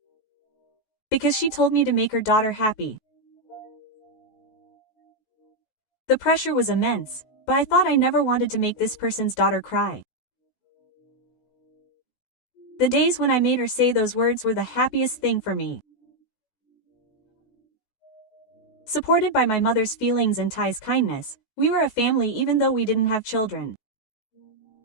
Because she told me to make her daughter happy. The pressure was immense, but I thought I never wanted to make this person's daughter cry. The days when I made her say those words were the happiest thing for me. Supported by my mother's feelings and Tai's kindness, we were a family even though we didn't have children.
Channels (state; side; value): late; right; 16 ms